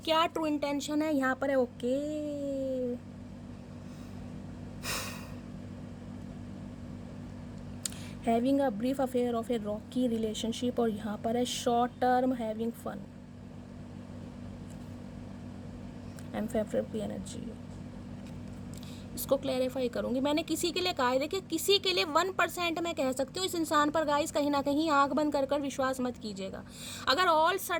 ट्रू इंटेंशन है। यहाँ पर है okay, having a brief affair of a rocky relationship, और यहाँ पर है short term having fun and favourite energy. इसको क्लैरिफाई करूंगी। मैंने किसी के लिए कहा है, देखिए किसी के लिए 1% मैं कह सकती हूँ इस इंसान पर गाइस कहीं ना कहीं आंख बंद कर विश्वास मत कीजिएगा। अगर ऑल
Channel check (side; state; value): both; identical; correlation 1.00